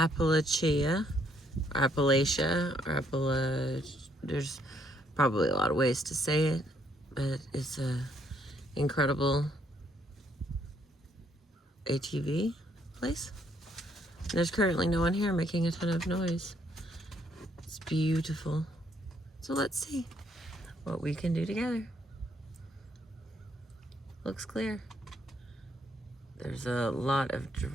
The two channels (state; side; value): normal; both; correlation 0.70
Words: there's probably a lot of ways to say it, but it's a incredible ATV place. There's currently no one here making a ton of noise. It's beautiful. So let's see what we can do together. Looks clear. There's a lot of